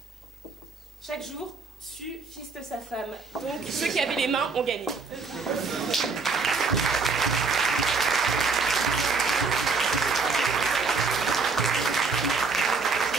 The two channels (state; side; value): quieter; left; 4.6 dB